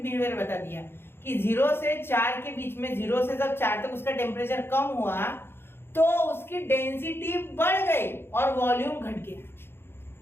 बता दिया कि 0 से 4 के बीच में, 0 से जब 4 तक उसका टेम्परेचर कम हुआ तो उसकी डेंसिटी बढ़ गई और वॉल्यूम घट गया,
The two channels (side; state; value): right; late; 0.11 ms